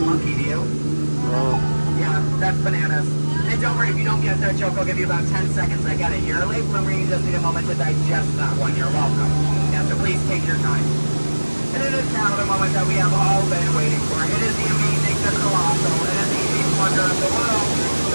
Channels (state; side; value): inverted; both; correlation -1.00